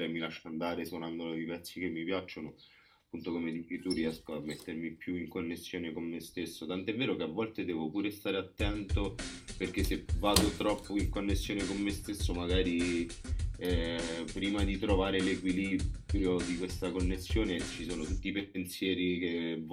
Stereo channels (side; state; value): both; identical; correlation 1.00